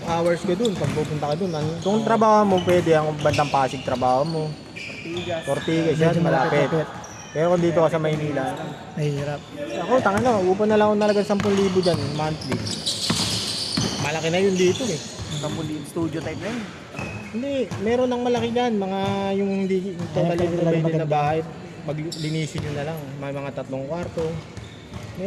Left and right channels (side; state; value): both; identical; correlation 1.00